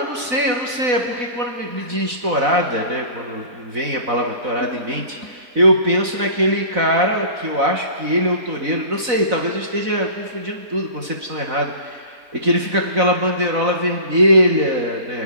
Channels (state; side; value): late; left; 4.0 ms